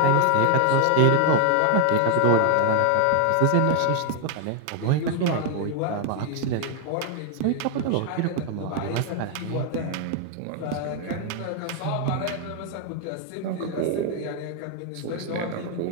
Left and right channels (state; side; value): different; both; correlation 0.00